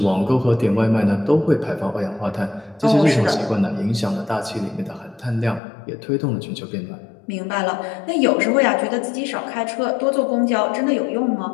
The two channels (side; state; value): right; drops out; at 5.6 s